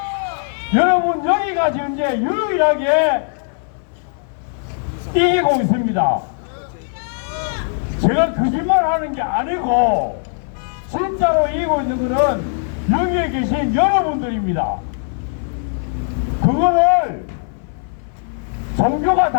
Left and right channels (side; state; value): right; silent; 60 dB below the other